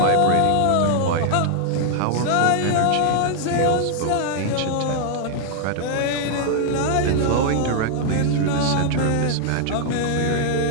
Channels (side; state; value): both; different; correlation 0.00